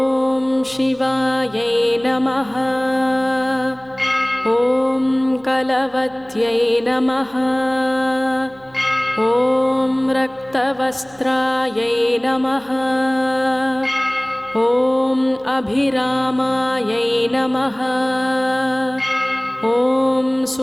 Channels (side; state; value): right; noise; hum, 27 dB below the sound